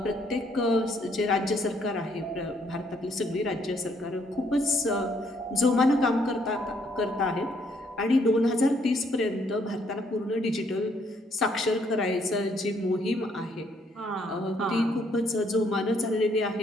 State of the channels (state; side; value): normal; both; correlation 0.69